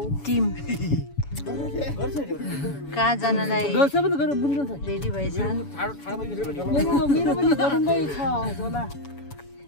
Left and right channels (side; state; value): right; late; 7.1 ms